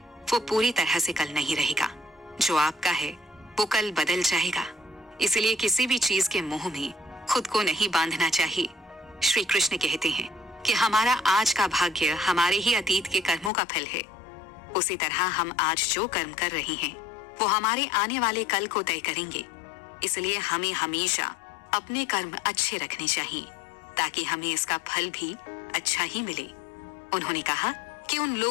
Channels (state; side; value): drops out; right; at 13.5 s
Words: वो पूरी तरह से कल नहीं रहेगा। जो आपका है वो कल बदल जाएगा, इसलिए किसी भी चीज के मोह में खुद को नहीं बांधना चाहिए। श्री कृष्ण कहते हैं कि हमारा आज का भाग्य हमारे ही अतीत के कर्मों का फल है। उसी तरह हम आज जो कर्म कर रहे हैं वो हमारे आने वाले कल को तय करेंगे। इसलिए हमें हमेशा अपने कर्म अच्छे रखने चाहिए ताकि हमें इसका फल भी अच्छा ही मिले। उन्होंने कहा कि उन